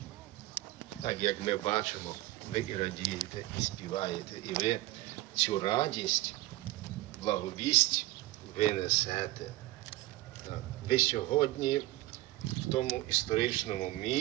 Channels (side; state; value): left; quieter; 17.7 dB